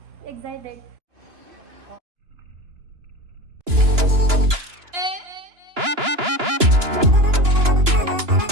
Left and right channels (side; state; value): left; late; 2.9 ms